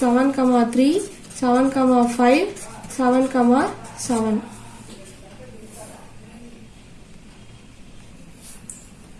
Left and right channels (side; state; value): both; identical; correlation 1.00